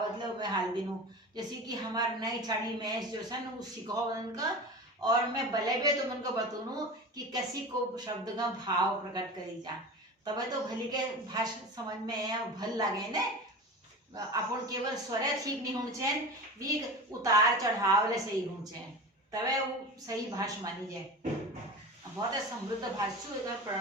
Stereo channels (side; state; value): both; normal; correlation 0.30